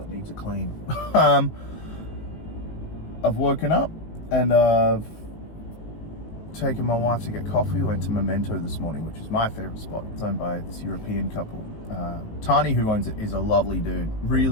needs a clean. I've woken up and I've taken my wife to get coffee. We went to Memento this morning, which is my favorite spot. It's owned by this European couple. Tani, who owns it, is a lovely dude.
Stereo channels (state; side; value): late; right; 19 ms